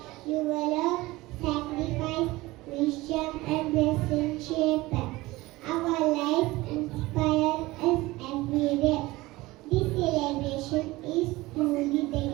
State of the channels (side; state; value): left; quieter; 19.9 dB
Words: You will have sacrifice, wisdom and blessing shape our life, inspire us every day. This celebration is truly